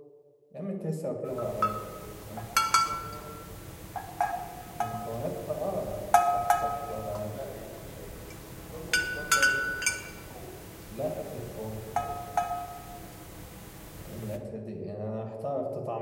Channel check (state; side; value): identical; both; correlation 1.00